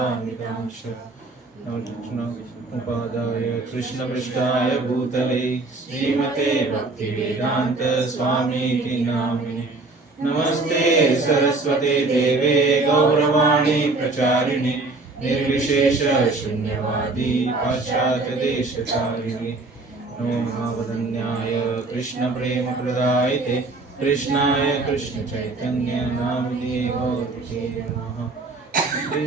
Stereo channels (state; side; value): quieter; left; 3.4 dB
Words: उपादाय कृष्णपृष्ठाय भूतले श्रीमते भक्तिवेदान्त स्वामीति नामिने। नमस्ते सरस्वते देवे गौरवाणी प्रचारिणे निर्विशेष शून्यवादी पाश्चात्य देशचारिणे। नमो महावदन्याय कृष्ण प्रेम प्रदायते कृष्णाय कृष्ण चैतन्य नामिने गौरते नमः।